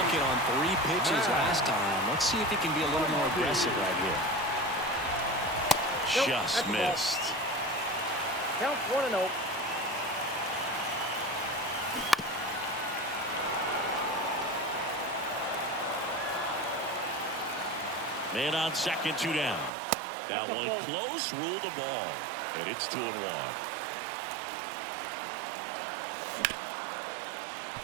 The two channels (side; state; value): left; drops out; at 19.7 s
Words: on 3 pitches last time. Let's see if he can be a little more aggressive right here. Just missed. Count 1-0. Man on second, 2 down. That one close, ruled the ball. And it's 2-1.